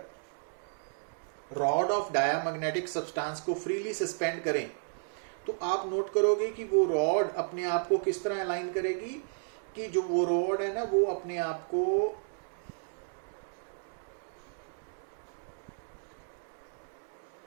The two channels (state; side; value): silent; left; digital silence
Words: रॉड ऑफ डायामैग्नेटिक सब्सटेंस को फ्रीली सस्पेंड करें, तो आप नोट करोगे कि वो रॉड अपने आप को किस तरह अलाइन करेगी, कि जो वो रॉड है ना वो अपने आप को